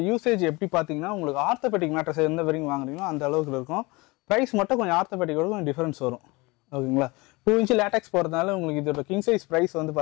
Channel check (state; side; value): quieter; right; 24.5 dB